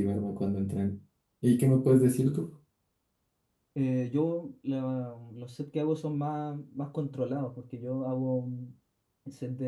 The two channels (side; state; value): both; identical; correlation 1.00